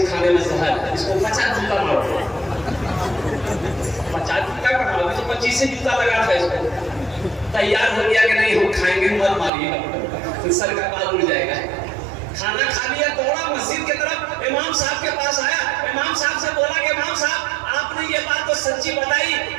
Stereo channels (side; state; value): left; drops out; at 9.5 s